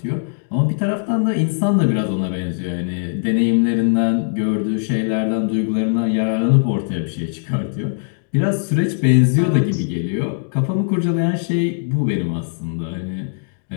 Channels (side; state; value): right; silent; digital silence